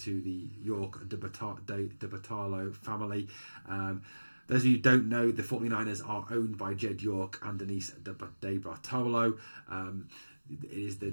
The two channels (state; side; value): inverted; both; correlation -1.00